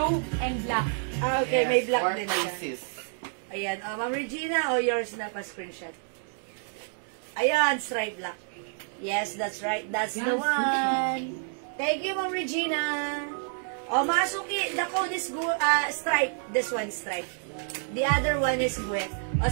and black. Ah, okay, may black Or din siya. faces. Ayan, Ma'am Regina, yours na pa-screenshot. Ayan, stripe black. Yes, that's right. That's the one. Thank you, Ma'am Regina. Mga suki, the code is stripe. This one, stripe. The other one is guhit.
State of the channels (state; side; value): silent; left; 59 dB below the other